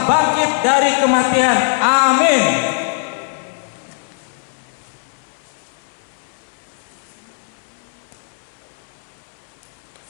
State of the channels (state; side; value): silent; right; 60 dB below the other